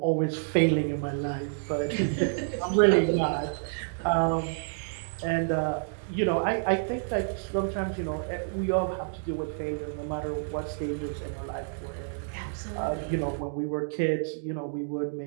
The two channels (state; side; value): silent; left; digital silence